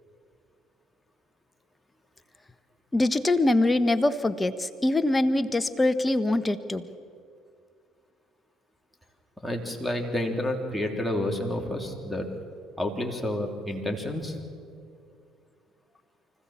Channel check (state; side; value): normal; both; correlation 0.89